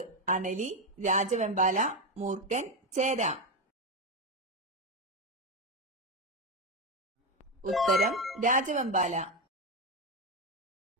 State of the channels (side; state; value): both; normal; correlation 0.10